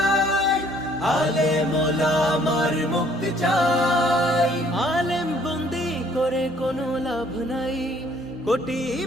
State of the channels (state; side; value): noise; right; hum, 26 dB below the sound